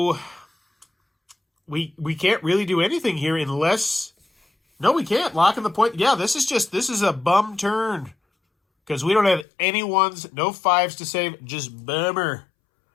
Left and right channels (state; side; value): drops out; right; at 9.5 s